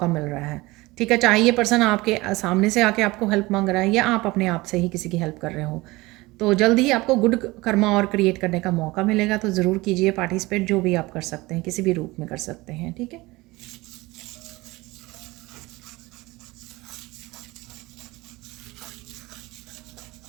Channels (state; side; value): quieter; left; 21.2 dB